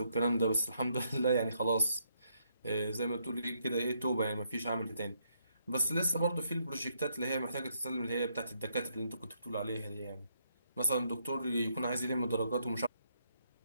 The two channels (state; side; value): inverted; both; correlation -0.76